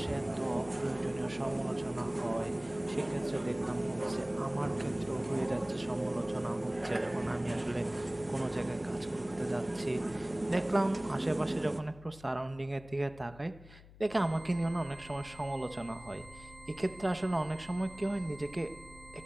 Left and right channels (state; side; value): noise; left; hum, 20 dB below the sound